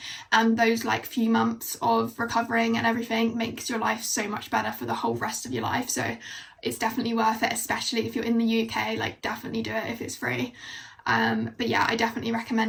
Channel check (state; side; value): identical; both; correlation 1.00